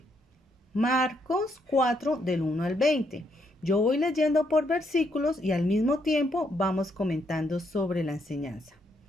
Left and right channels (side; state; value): both; normal; correlation 0.75